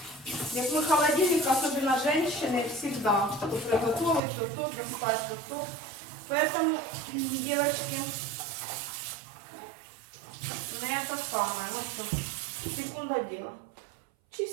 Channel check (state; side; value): drops out; left; at 4.2 s